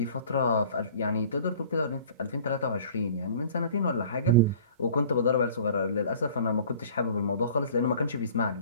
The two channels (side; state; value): both; inverted; correlation -0.46